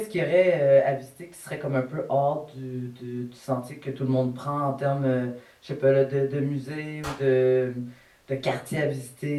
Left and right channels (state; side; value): identical; both; correlation 1.00